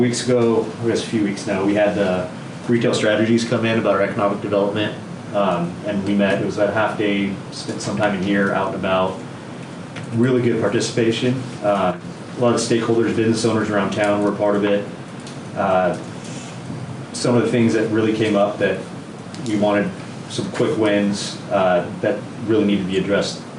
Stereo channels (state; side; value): identical; both; correlation 1.00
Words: ago, I guess a few weeks now, we had the retail strategies come in about our economic development. And we met, it was about a half day, spent some time in here, out and about. Really good participation. A lot of stakeholders, business owners around town were a part of it. Some of the things that really came up that we wanted some quick wins that really need to be addressed